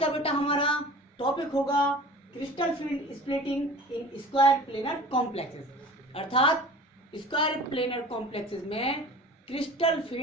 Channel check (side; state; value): both; normal; correlation 0.41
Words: बेटा हमारा टॉपिक होगा crystal field splitting in square planar complexes, अर्थात स्क्वायर प्लेनर कॉम्प्लेक्सेस में क्रिस्टल